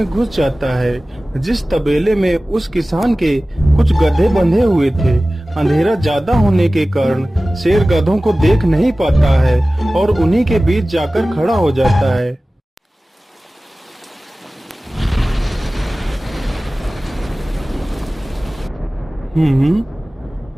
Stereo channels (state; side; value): normal; both; correlation 0.97